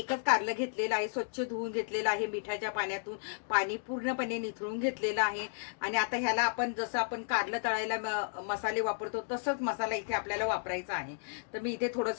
कारलं घेतलेलं आहे, स्वच्छ धुवून घेतलेलं आहे, मिठाच्या पाण्यातून पाणी पूर्णपणे निथळून घेतलेलं आहे. आणि आता ह्याला आपण जसं आपण कारलं तळायला मसाले वापरतो तसंच मसाला इथे आपल्याला वापरायचा आहे. तर मी इथे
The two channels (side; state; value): right; silent; digital silence